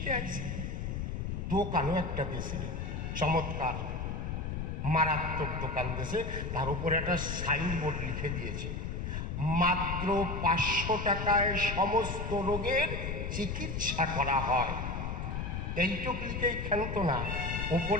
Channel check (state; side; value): noise; left; rumble, 3 dB below the sound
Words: আসছি, দোকানও একটা দেশে চমৎকার। মারাত্মক দোকান দিয়েছে, তার উপরে একটা সাইনবোর্ড লিখে দিয়েছে, মাত্র 500 টাকায় সমস্ত রোগের চিকিৎসা করা হয়। এইটুক লিখেই ক্ষান্ত না,